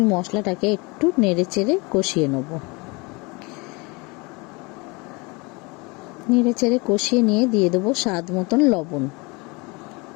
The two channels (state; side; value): quieter; right; 27.3 dB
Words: মশলাটাকে একটু নেড়ে চেড়ে কষিয়ে নেব। নেড়ে চেড়ে কষিয়ে নিয়ে দিয়ে দেবো স্বাদ মতন লবণ।